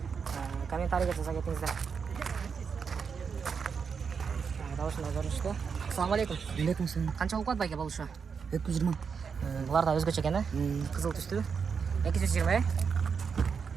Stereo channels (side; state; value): left; quieter; 6.1 dB